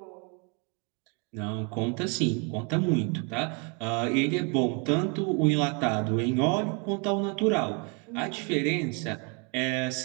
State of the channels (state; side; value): quieter; left; 34.2 dB